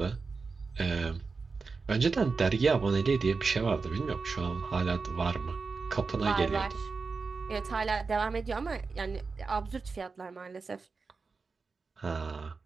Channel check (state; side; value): quieter; left; 4.5 dB